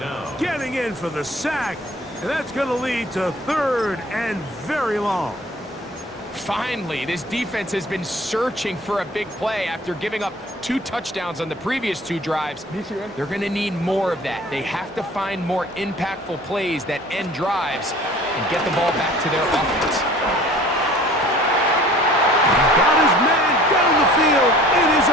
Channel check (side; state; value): both; normal; correlation 0.48